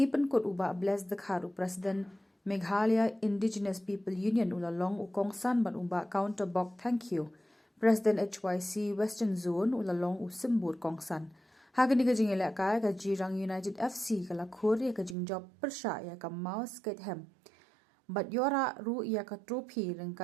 kot uba bless the kharu President Meghalaya Indigenous People Union ulalong ukongsan ban uba counter bok thank you. President HYC Western Zone ulalong usimbur kongsan. Hagani ka jing ilakay ka Jirang United FC ka lakur ya ka jing job persya ya ka mouse skate hem. Bat yora ru ya ka trophy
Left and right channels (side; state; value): left; drops out; at 15.2 s